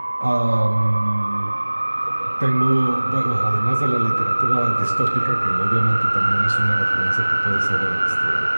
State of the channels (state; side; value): inverted; both; correlation -1.00